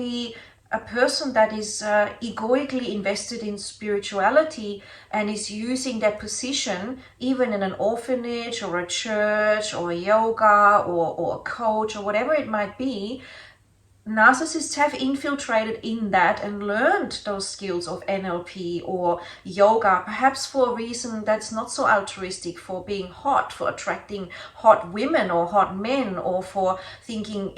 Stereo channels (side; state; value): both; identical; correlation 1.00